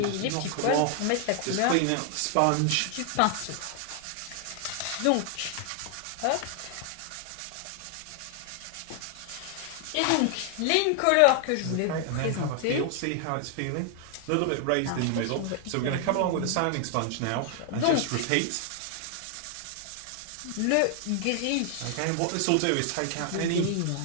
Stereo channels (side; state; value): both; different; correlation 0.00